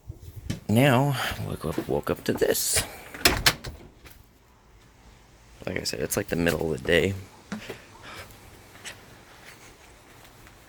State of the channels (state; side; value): identical; both; correlation 1.00